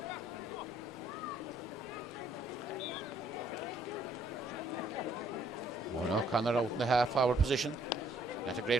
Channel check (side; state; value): both; normal; correlation 0.65